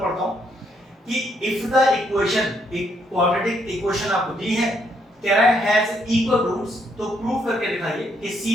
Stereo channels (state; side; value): normal; both; correlation 0.73